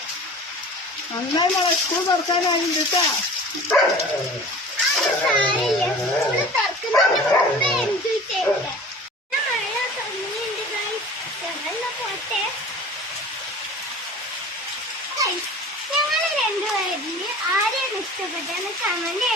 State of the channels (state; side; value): normal; both; correlation 0.41